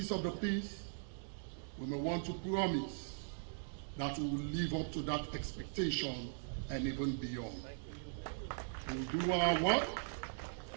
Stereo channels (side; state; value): left; silent; digital silence